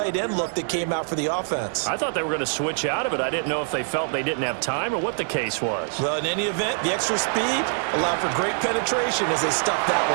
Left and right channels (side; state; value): left; silent; 60 dB below the other